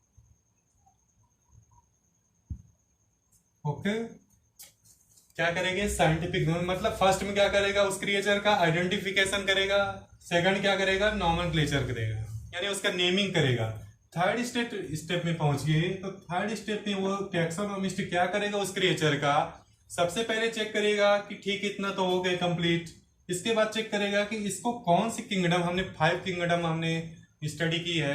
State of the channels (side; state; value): both; identical; correlation 1.00